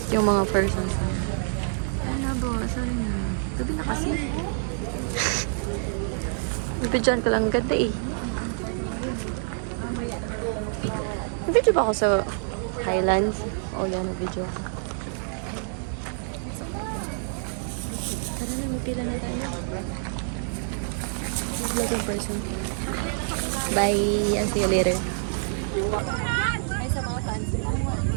yung mga persons. Ano ba? Sorry na. Gabi na kasi. Bibidyoan ko lang ganda eh. Nag-video ba ako sa Highlands? O yan, nag-video ako. Tara na, magpila na tayo. Vlog in person. Bye! I'll see you later. Ay, sa mga fans.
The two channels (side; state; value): left; silent; digital silence